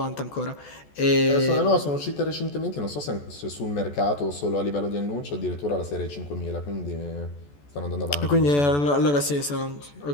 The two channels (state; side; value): late; right; 14 ms